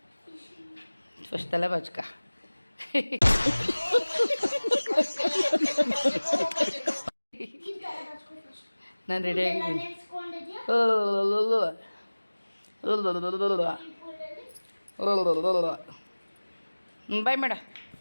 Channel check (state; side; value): inverted; both; correlation -1.00